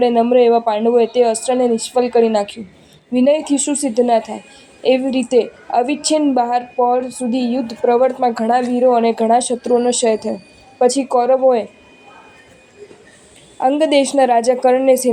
નમ્ર એવા પાંડવોએ તે અસ્ત્રને નિષ્ફળ કરી નાખ્યું. વિનયથી શું સિદ્ધ ના થાય? એવી રીતે અવિચ્છિન્ન બહાર પહોર સુધી યુદ્ધ પ્રવર્તમાં ઘણા વીરો અને ઘણા શત્રુઓનો ક્ષય થયો. પછી કૌરવોએ અંગ દેશના રાજા કર્ણને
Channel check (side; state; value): both; identical; correlation 1.00